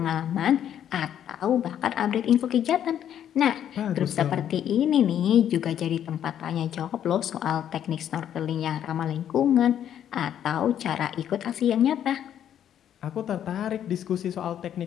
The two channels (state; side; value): quieter; right; 10.0 dB